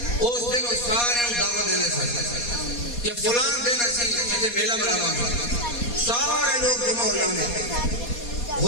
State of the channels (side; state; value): right; late; 4.2 ms